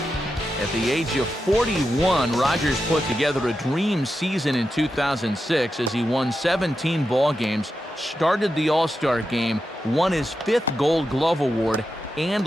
At the age of 41, Rogers put together a dream season in 2006 as he won 17 ball games, started the All-Star game, won his 5th Gold Glove Award, and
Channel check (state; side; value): normal; both; correlation 0.89